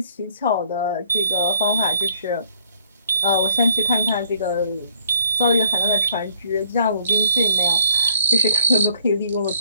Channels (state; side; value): inverted; both; correlation -0.63